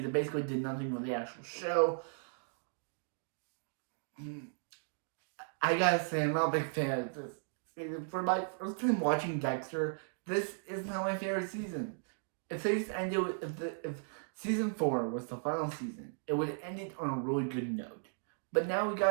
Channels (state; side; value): silent; left; digital silence